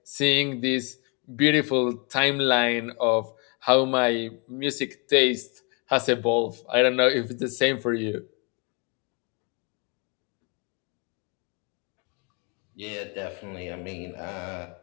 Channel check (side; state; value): right; quieter; 33.2 dB